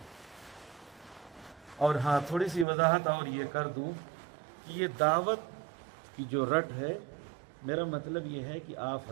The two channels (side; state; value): left; drops out; at 2.7 s